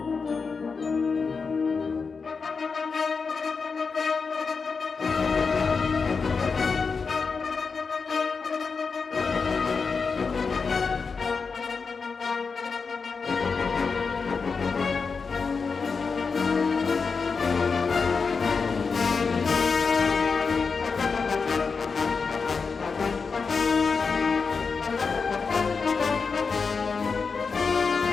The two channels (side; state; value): right; quieter; 5.0 dB